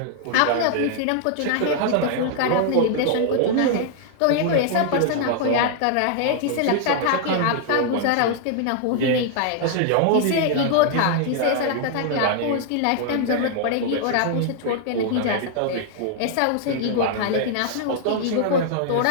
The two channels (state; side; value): different; both; correlation 0.00